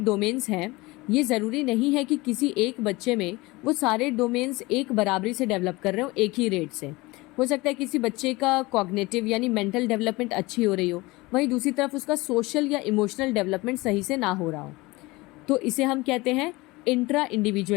हैं, ये ज़रूरी नहीं है कि किसी एक बच्चे में वो सारे डोमेन्स एक बराबरी से डेवलप कर रहे हो एक ही रेट से। हो सकता है किसी बच्चे का कॉग्निटिव यानी मेंटल डेवलपमेंट अच्छी हो रही हो, वहीं दूसरी तरफ उसका सोशल या इमोशनल डेवलपमेंट सही से ना हो रहा हो। तो इसे हम कहते हैं इंट्रा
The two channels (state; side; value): quieter; right; 22.2 dB